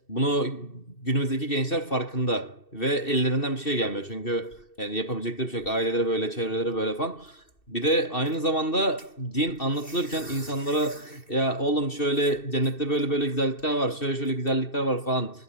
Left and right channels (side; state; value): right; late; 2.7 ms